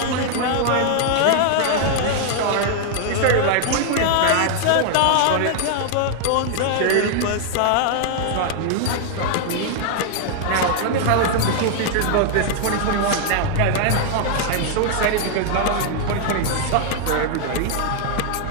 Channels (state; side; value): different; both; correlation 0.00